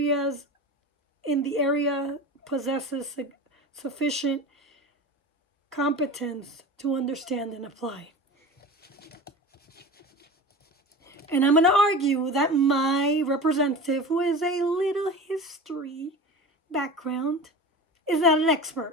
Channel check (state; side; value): normal; both; correlation 0.33